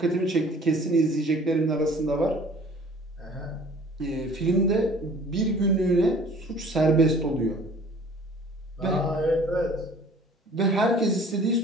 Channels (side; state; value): both; normal; correlation 0.50